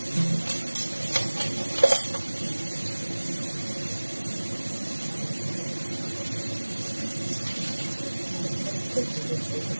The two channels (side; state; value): both; inverted; correlation -1.00